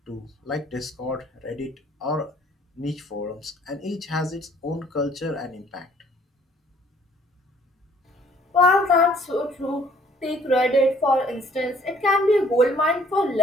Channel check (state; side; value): normal; both; correlation 0.59